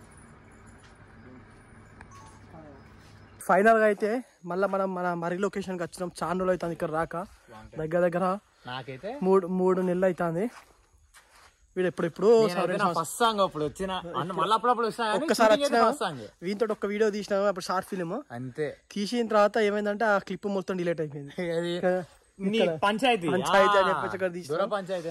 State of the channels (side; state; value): both; identical; correlation 1.00